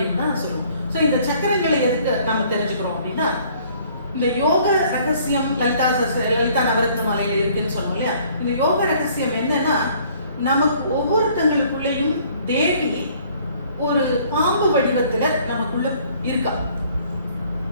தான் சொல்லுவோம். ஸோ இந்த சக்கரங்களை எதுக்கு நம்ம தெரிஞ்சுக்கிறோம் அப்படின்னா, இந்த யோக ரகசியம் லலிதா நவரத்ன மாலையில இருக்குன்னு சொன்னோம் இல்லையா? இந்த யோக ரகசியம் என்னன்னா, நமக்கு ஒவ்வொருத்தங்களுக்குள்ளேயும் தேவி ஒரு பாம்பு வடிவத்துல நமக்குள்ள இருக்கா.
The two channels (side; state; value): both; inverted; correlation -0.58